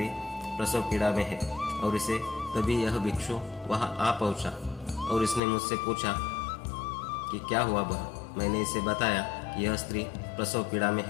प्रसव पीड़ा में है। और इसे तभी यह भिक्षु वहां आ पहुंचा और इसने मुझसे पूछा कि क्या हुआ बहन? मैंने इसे बताया कि यह स्त्री प्रसव पीड़ा में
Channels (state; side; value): drops out; right; at 5.4 s